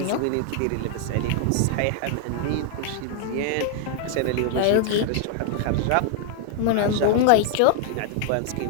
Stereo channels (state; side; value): different; both; correlation 0.00